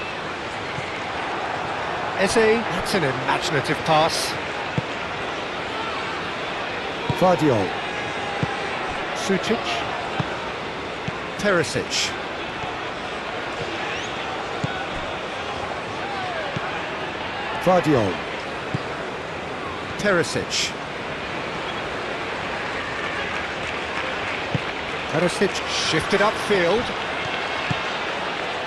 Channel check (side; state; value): both; identical; correlation 1.00